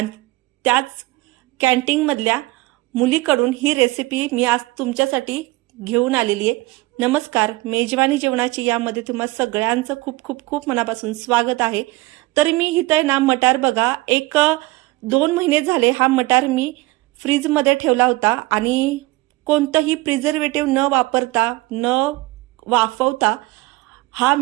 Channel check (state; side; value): quieter; left; 20.9 dB